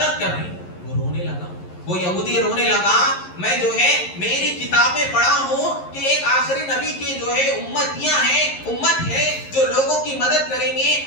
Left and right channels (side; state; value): right; late; 11 ms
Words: کر رہی۔ وہ رونے لگا، وہ یہودی رونے لگا، میں جو ہے میری کتابیں پڑھا ہوں کہ ایک آخری نبی کی جو ہے امتیاں ہیں، امت ہے جو لوگوں کی مدد کریں گے،